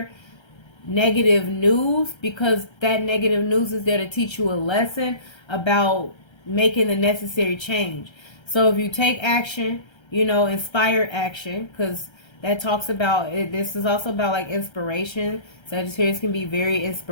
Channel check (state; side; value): late; right; 1.3 ms